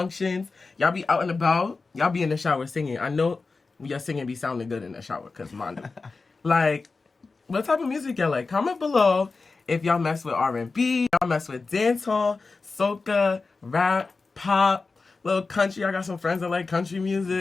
Y'all be out and about? Y'all be in the shower singing? I know your singing be sounding good in the shower, because mine do. Like, what type of music y'all like? Comment below if y'all mess with R&B, y'all mess with dancehall, soca, rap, pop, little country. I got some friends that like country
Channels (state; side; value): quieter; right; 4.1 dB